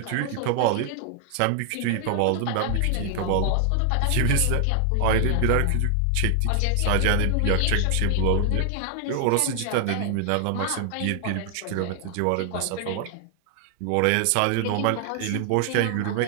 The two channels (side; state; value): both; different; correlation 0.00